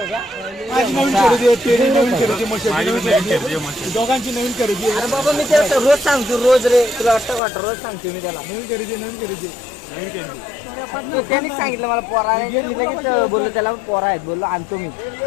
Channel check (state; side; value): drops out; right; at 7.4 s